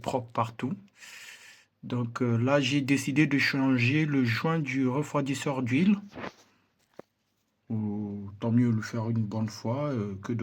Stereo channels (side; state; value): both; identical; correlation 1.00